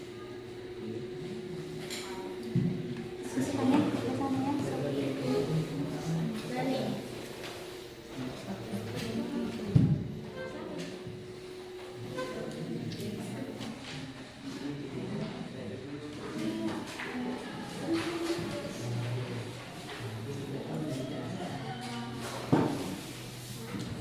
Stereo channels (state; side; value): identical; both; correlation 1.00